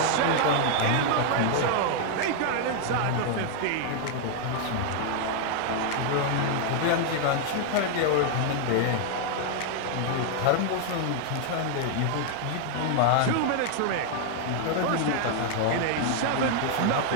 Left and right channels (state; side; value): different; both; correlation 0.00